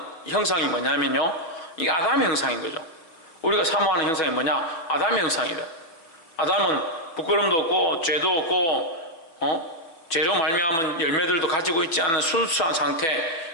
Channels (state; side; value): late; right; 6.1 ms